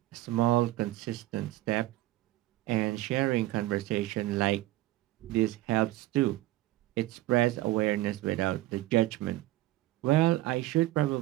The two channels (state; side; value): quieter; left; 16.8 dB